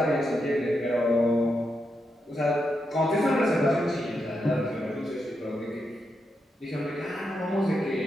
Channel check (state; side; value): normal; both; correlation 0.84